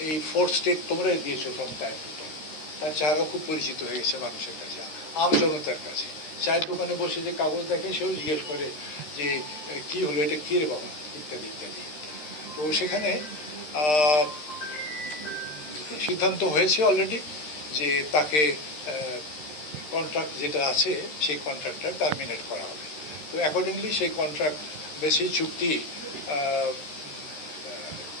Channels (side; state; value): right; late; 13 ms